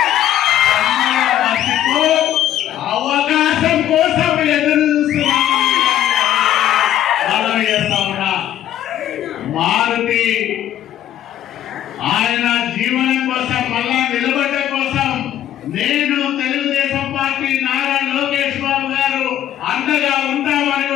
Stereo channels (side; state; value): right; quieter; 11.8 dB